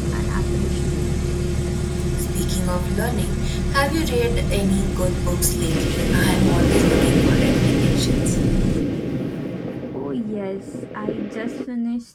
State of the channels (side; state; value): both; identical; correlation 1.00